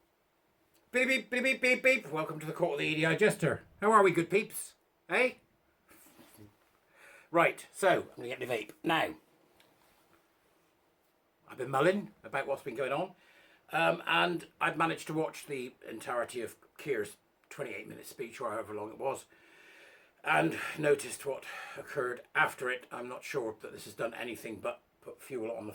Beep, beep, beep, beep, beep, beep. Welcome to the court of the Edijester. How are we, good peeps? Hey? Right, so, I'm going to get my vape. Now, I've been mulling about what's been going on, and I've managed to watch the entirety of Kier's 28-minute speech, or however long it was, and noticed what occurred after it. I'm not sure that this has done anything but put fuel on the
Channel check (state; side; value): identical; both; correlation 1.00